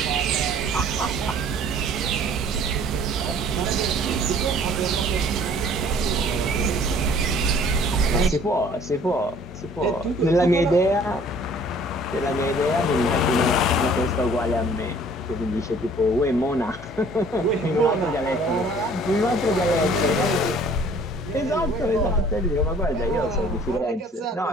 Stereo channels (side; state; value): both; normal; correlation 0.53